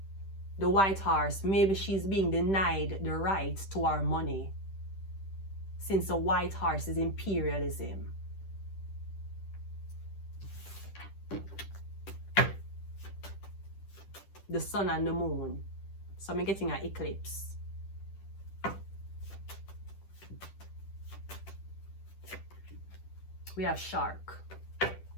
The white horse, maybe she's being denied the right to our money, since the white horse is imperialism. The sun and the moon. So I'm getting an eclipse. We have shark.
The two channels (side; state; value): right; late; 10 ms